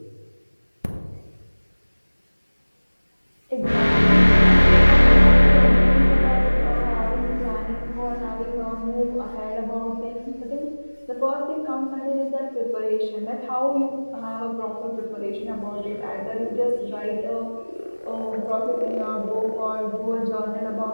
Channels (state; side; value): inverted; both; correlation -1.00